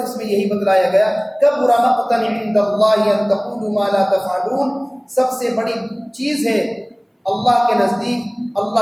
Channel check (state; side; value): identical; both; correlation 1.00